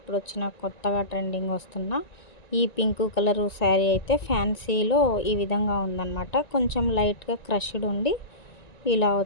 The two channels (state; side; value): late; right; 1.9 ms